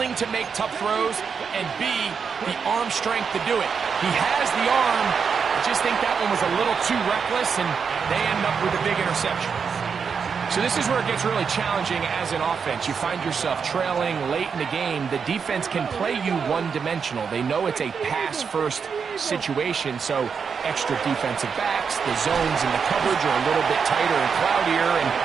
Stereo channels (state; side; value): quieter; left; 6.1 dB